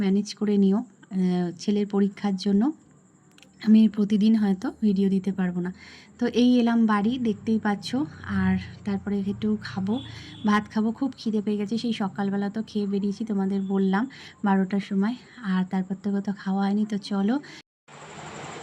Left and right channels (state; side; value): identical; both; correlation 1.00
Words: ম্যানেজ করে নিও। ছেলের পরীক্ষার জন্য আমি প্রতিদিন হয়তো ভিডিও দিতে পারবো না। তো এই এলাম বাড়ি, দেখতেই পাচ্ছ। আর তারপরে একটু ভাত খাবো, খুব খিদে পেয়ে গেছে। সেই সকালবেলা তো খেয়ে বেরিয়েছি, তোমাদের বললাম 12টার সময়, আর তারপর থেকে তো খাওয়া হয়নি। তো চলো।